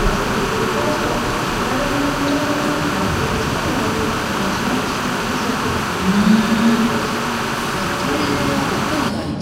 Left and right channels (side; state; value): both; identical; correlation 1.00